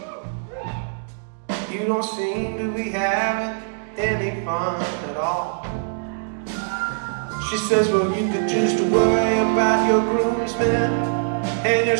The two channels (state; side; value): silent; left; digital silence